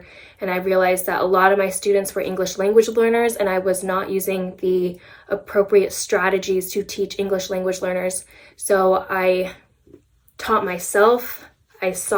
and I realized that a lot of my students were English language learners, and I was not using the appropriate strategies to teach English language learners. So I taught myself, I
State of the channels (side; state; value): both; identical; correlation 1.00